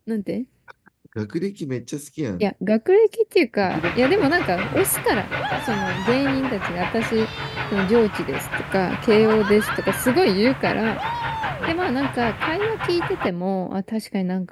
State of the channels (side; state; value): both; identical; correlation 1.00